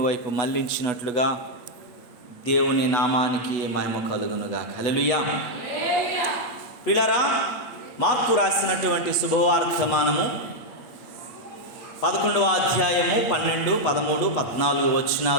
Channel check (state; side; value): late; right; 8.2 ms